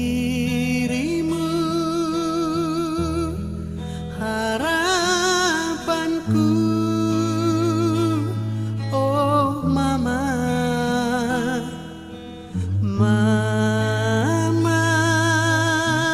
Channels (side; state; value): both; identical; correlation 1.00